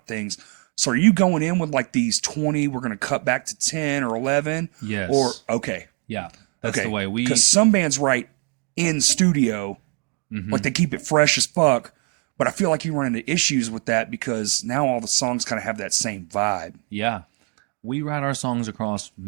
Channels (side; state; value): left; quieter; 36.0 dB